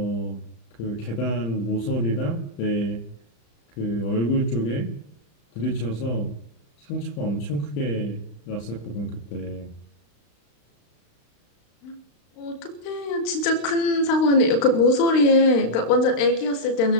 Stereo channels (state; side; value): late; right; 35 ms